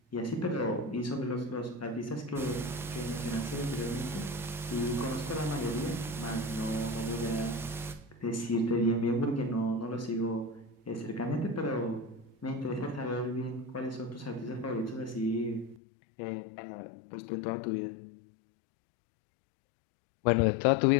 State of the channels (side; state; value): right; drops out; at 15.8 s